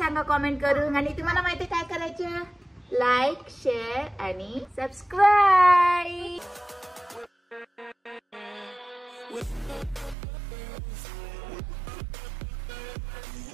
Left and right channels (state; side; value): drops out; left; at 10.2 s